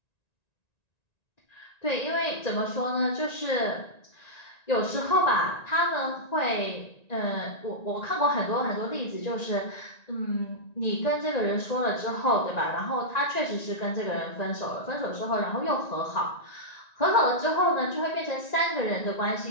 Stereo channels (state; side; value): late; right; 1.9 ms